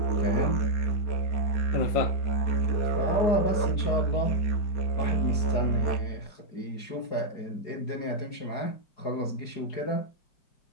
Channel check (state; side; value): late; right; 4.8 ms